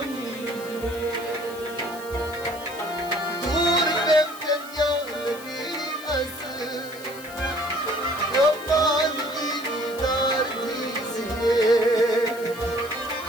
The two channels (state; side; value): noise; left; hiss, 17 dB below the sound